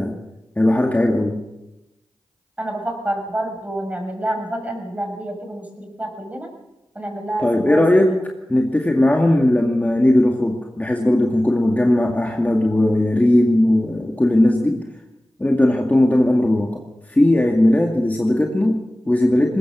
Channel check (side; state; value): both; normal; correlation 0.96